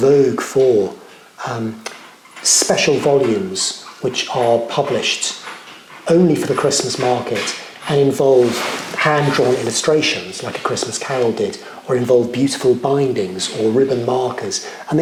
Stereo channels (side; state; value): both; identical; correlation 1.00